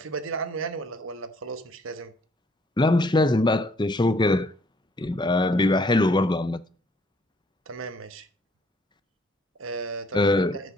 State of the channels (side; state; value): both; normal; correlation 0.64